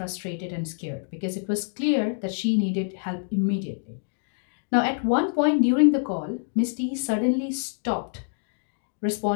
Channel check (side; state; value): right; silent; digital silence